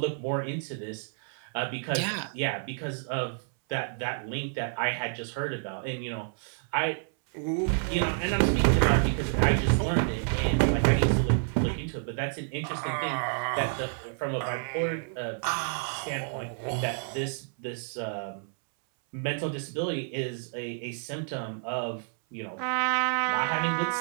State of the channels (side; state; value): left; silent; 58 dB below the other